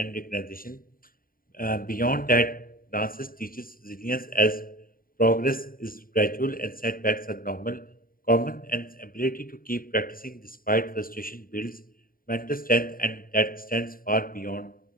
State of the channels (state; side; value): late; right; 0.41 ms